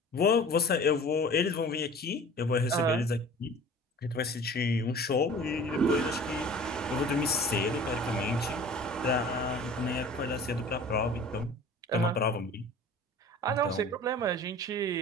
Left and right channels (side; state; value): both; normal; correlation 0.43